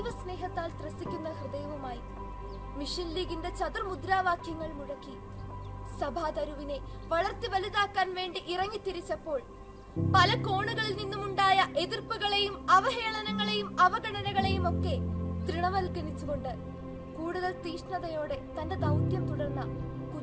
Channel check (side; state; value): both; identical; correlation 1.00